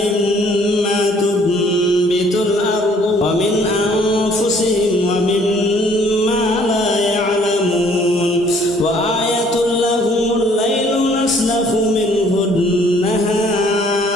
تنبت الأرض ومن أنفسهم ومما لا يعلمون وآية لهم الليل نسلخ منه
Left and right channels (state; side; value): normal; both; correlation 0.60